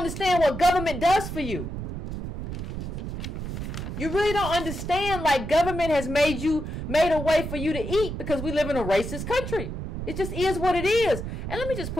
what government does for you. You really don't understand, like, government has made a way for you to eat because we live in a racist country. It just is what it is. And let me just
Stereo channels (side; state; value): right; noise; rumble, 6 dB below the sound